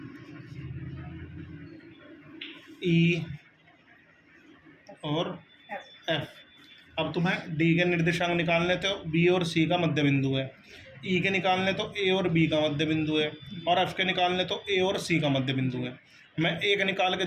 E और F। अब तुम्हें D के निर्देशांक निकालने तो B और C का मध्य बिंदु है, E के निकालने तो A और B का मध्य बिंदु है, और F के निकालने तो A और C का मध्य बिंदु है। मैं एक निकाल के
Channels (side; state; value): both; identical; correlation 1.00